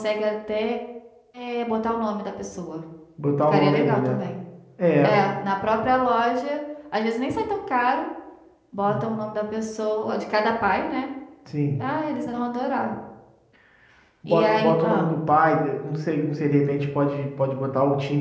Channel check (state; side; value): identical; both; correlation 1.00